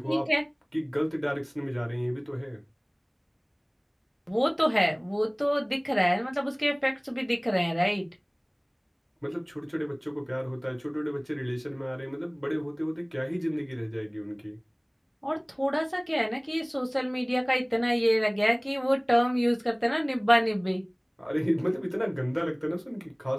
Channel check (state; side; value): identical; both; correlation 1.00